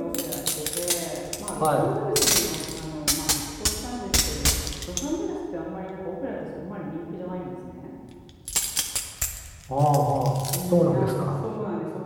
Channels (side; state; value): both; identical; correlation 1.00